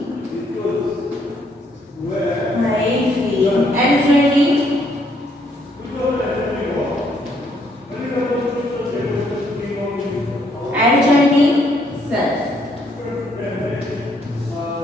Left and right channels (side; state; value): both; normal; correlation 0.70